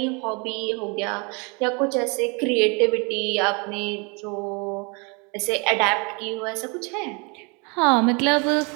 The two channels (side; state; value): left; quieter; 31.3 dB